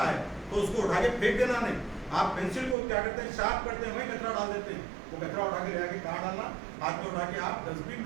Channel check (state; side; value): drops out; left; at 2.8 s